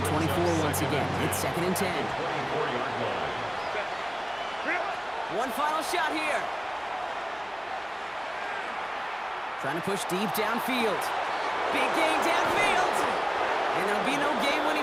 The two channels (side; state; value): right; noise; hum, 30 dB below the sound